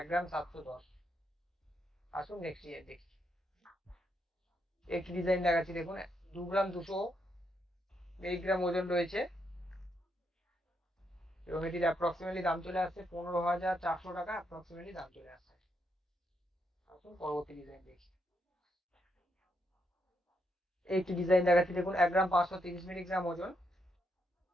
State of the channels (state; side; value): normal; both; correlation 0.79